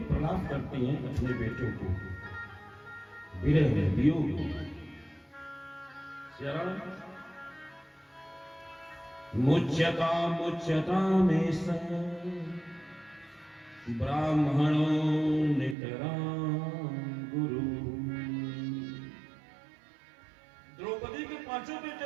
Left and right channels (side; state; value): left; drops out; at 15.8 s